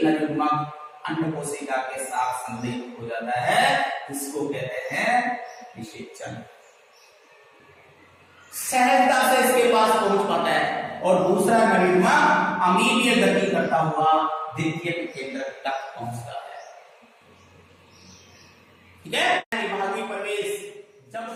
नरयुग्मक अन्य कोशिका के साथ संलग्न हो जाता है, इसको कहते हैं निषेचन। सहजता से इसके पास पहुंच पाता है और दूसरा नरयुग्मक अमीनीय गति करता हुआ द्वितीयक केंद्र तक पहुंचता है। ठीक है।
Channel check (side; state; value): both; identical; correlation 1.00